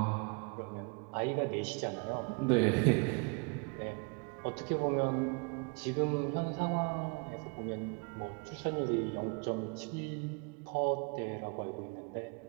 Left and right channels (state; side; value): quieter; left; 33.6 dB